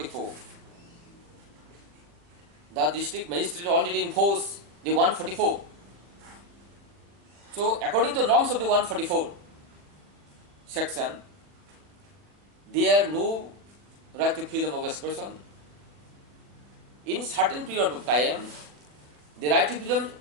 The district magistrate already enforced the 144. So according to norms of the 144 section, there no right to freedom of expression. In certain period of time, the right to freedom,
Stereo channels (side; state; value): left; late; 40 ms